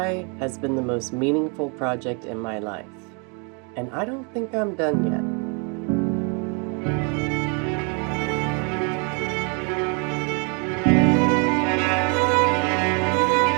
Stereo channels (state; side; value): quieter; left; 35.6 dB